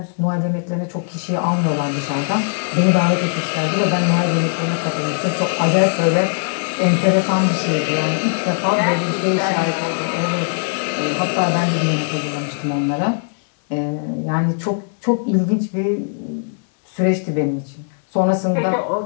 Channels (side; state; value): right; silent; 64 dB below the other